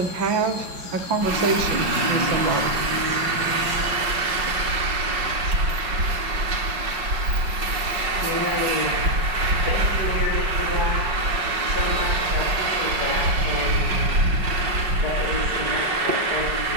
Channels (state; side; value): late; left; 5.4 ms